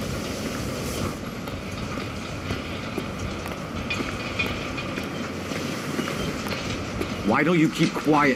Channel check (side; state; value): both; identical; correlation 1.00